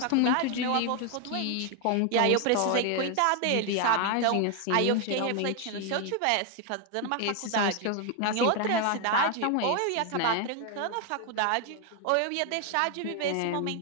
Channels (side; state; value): both; different; correlation 0.01